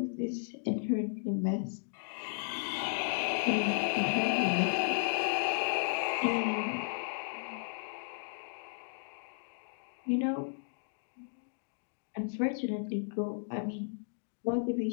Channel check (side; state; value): right; silent; digital silence